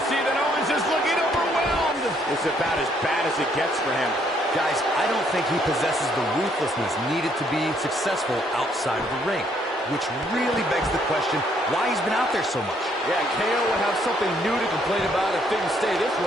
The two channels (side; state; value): both; normal; correlation 0.68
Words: see that Owens is looking overwhelmed. It's about as bad as it gets for him. Guys, I don't think he possesses the ruthlessness needed to be successful outside of the ring, which really begs the question why he's been out there so much. Yeah, KO will have something new to complain about if things stay this